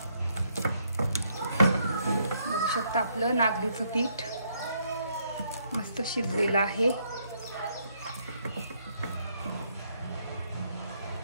बघू शकता आपलं नागलीचं पीठ मस्त शिजलेलं आहे.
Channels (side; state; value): both; inverted; correlation -0.72